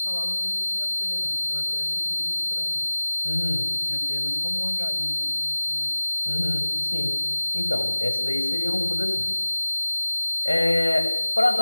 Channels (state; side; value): inverted; both; correlation -1.00